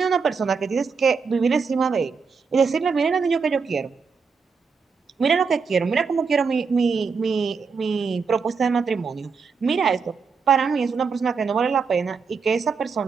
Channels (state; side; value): quieter; left; 5.3 dB